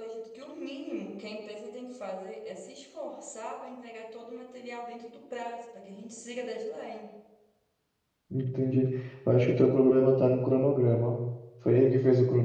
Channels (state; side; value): identical; both; correlation 1.00